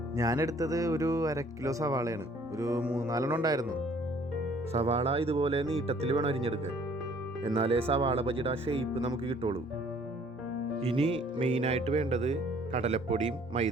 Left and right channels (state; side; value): normal; both; correlation 0.58